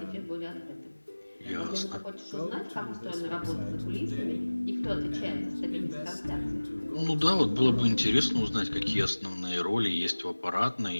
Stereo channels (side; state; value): both; inverted; correlation -1.00